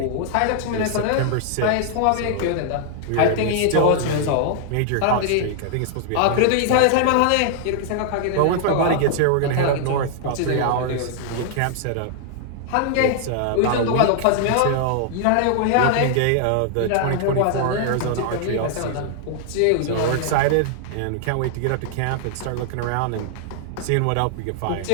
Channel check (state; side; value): different; both; correlation 0.00